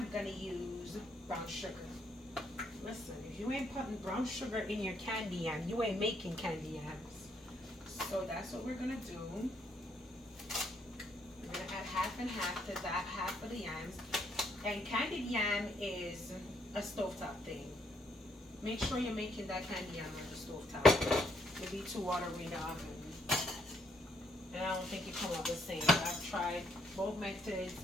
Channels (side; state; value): both; normal; correlation 0.72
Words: going to use brown sugar. Listen, if you ain't putting brown sugar in your candy yam, you ain't making candy yams. So that's what we're going to do. We're going to add half and half to that half of the yams. And candied yam is a stovetop thing. Make sure you're making that candy yam on the stovetop. It'll be too watery in the oven. And I don't think it comes out the same. I've tried both methods,